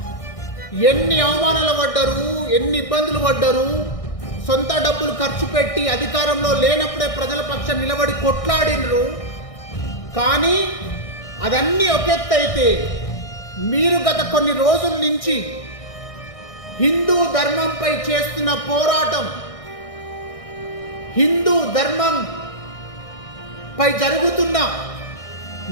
ఎన్ని అవమానాలు పడ్డారు, ఎన్ని ఇబ్బందులు పడ్డారు, సొంత డబ్బులు ఖర్చు పెట్టి అధికారంలో లేనప్పుడే ప్రజల పక్షం నిలబడి కొట్లాడినరు. కానీ అదన్నీ ఒక ఎత్తు అయితే, మీరు గత కొన్ని రోజుల నుంచి హిందూ ధర్మంపై చేస్తున్న పోరాటం, హిందూ ధర్మం పై జరుగుతున్న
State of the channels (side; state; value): right; late; 1.6 ms